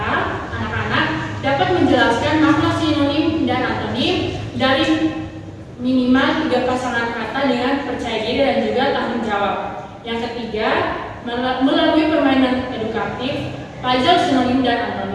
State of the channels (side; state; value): both; identical; correlation 1.00